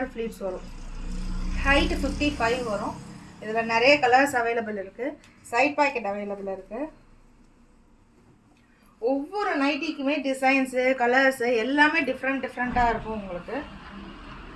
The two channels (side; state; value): both; identical; correlation 1.00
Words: ஃப்ளீட்ஸ் வரும். ஹைட்டு 55 வரும். இதில் நிறைய கலர்ஸ் அவைலபிள் இருக்குது. சைட் பாக்கெட் அவைலபிள் இருக்குது. ஒவ்வொரு நைட்டிக்குமே டிசைன்ஸு கலர்ஸு எல்லாமே டிஃப்ரெண்ட்டாக இருக்கும். உங்களுக்கு